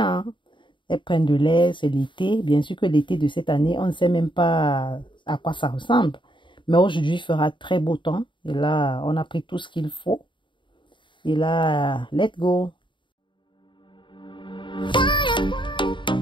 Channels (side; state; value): right; late; 0.23 ms